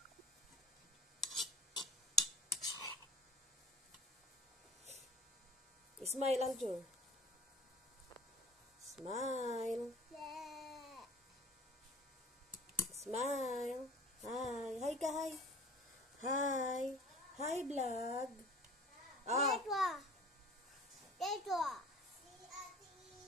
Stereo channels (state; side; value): normal; both; correlation 0.44